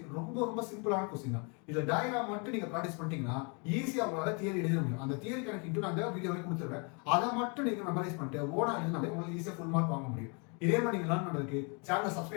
ரொம்ப சிம்பிளான क्वेश्चन தான். இந்த டயகிராம் மட்டும் நீங்க பிராக்டீஸ் பண்ணிட்டீங்கன்னா ஈஸியா உங்களால தியரி எழுத முடியும். அந்த தியரி கணக்கு இன்டு நான் இந்த வீடியோல கொடுத்துறேன். அத மட்டும் நீங்க மெமரைஸ் பண்ணிட்டு ஓனா எழுதினாலே உங்களுக்கு ஈஸியா ஃபுல் மார்க் வாங்க முடியும். இதே மாதிரி நீங்க லேர்ன் பண்றதுக்கு சேனலை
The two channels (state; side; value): quieter; right; 34.7 dB